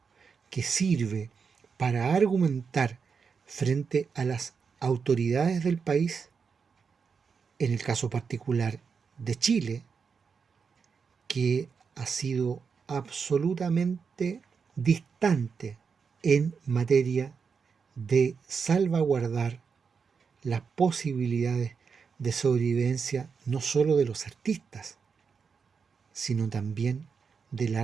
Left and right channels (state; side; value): quieter; left; 5.8 dB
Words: que sirve para argumentar frente a las autoridades del país, en el caso particular de Chile, que ha sido absolutamente distante en materia de salvaguardar las posibilidades de sobrevivencia no solo de los artistas, sino también del